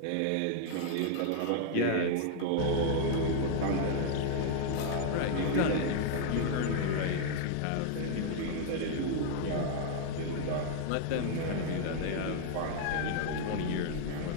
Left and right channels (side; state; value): both; different; correlation 0.00